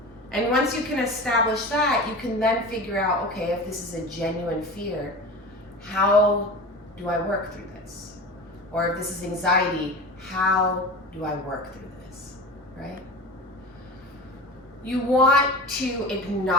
And once you can establish that, you can then figure out, okay, if this is a genuine fear, how do I work through this? Or if this is anxiety, how do I work through this, right? You want to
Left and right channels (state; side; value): normal; both; correlation 0.32